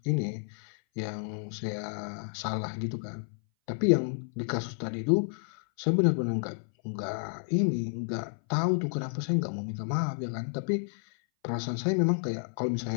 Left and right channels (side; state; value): right; silent; 57 dB below the other